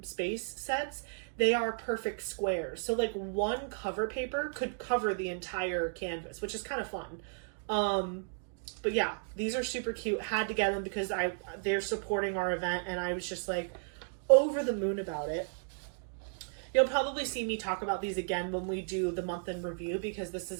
Space sets, they are perfect squares. So like one cover paper could cover the entire canvas, which is kind of fun. But yeah, these are super cute. Had to get them because they're supporting our event, and I was just like over the moon about it. You'll probably see me talk about these again when we do the month in review, because this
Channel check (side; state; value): left; silent; digital silence